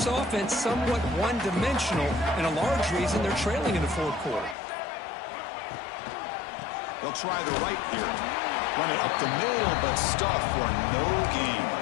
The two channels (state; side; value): drops out; right; at 4.5 s